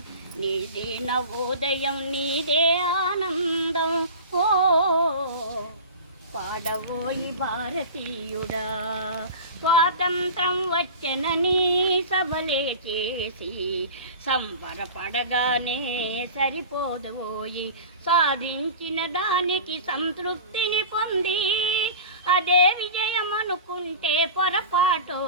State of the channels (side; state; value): both; inverted; correlation -0.34